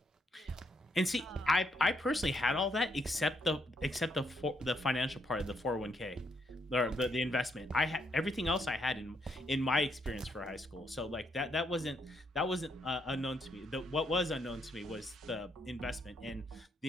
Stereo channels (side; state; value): both; normal; correlation 0.75